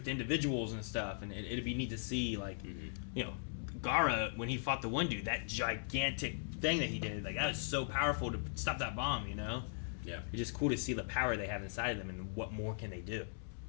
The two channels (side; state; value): right; silent; digital silence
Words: to individuals and stuff. And it'd be neat to see like, you know, Gaara when he fought the one dude, that gigantic thing that he did, like that was so powerful to stop that bomb. You know. Yeah. It's just cool to see the power they have inside of them and what more can they do.